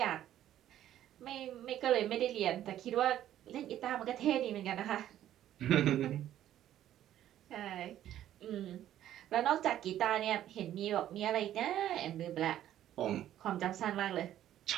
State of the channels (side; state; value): left; quieter; 12.0 dB